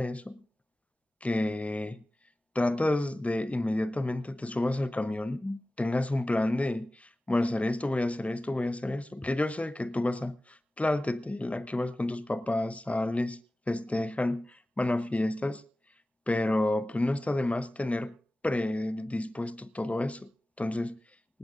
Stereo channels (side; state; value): both; normal; correlation 0.96